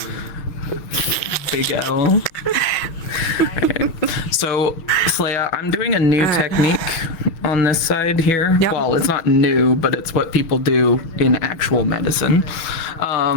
Big L. Okay. So, Slaya, I'm doing a new technique on this side here. Yep. Well, it's not new, but it's what people do in actual medicine.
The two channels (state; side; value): late; right; 6.2 ms